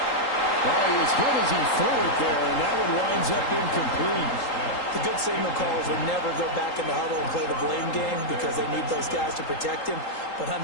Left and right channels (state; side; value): late; right; 3.8 ms